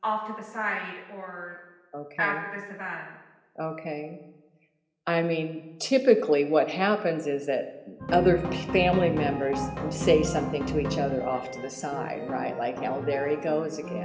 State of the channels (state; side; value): identical; both; correlation 1.00